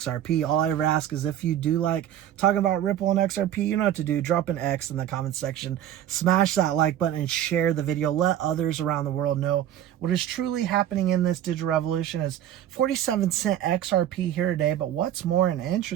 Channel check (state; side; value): quieter; left; 11.3 dB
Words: All I ever ask is if you do like talking about Ripple and XRP, you know what to do. Drop an X in the comment section, smash that like button, and share the video. Let others around the world know what is truly happening in this digital revolution. Is 47-cent XRP here today, but what's more and